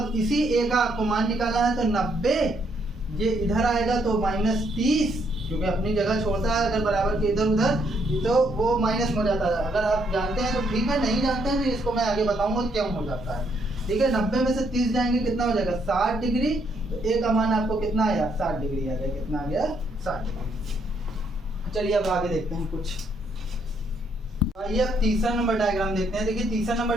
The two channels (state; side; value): normal; both; correlation 0.72